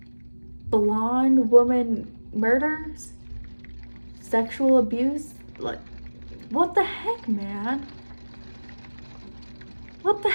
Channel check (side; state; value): both; inverted; correlation -1.00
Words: blonde woman murders, sexual abuse. Like, what the heck, man? What the